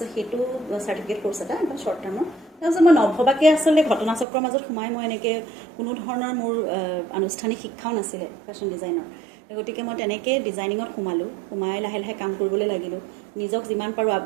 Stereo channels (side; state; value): left; drops out; at 4.2 s